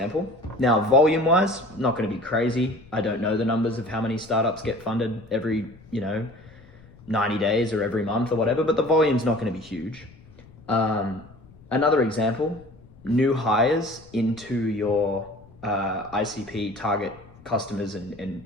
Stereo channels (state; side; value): noise; left; rumble, 23 dB below the sound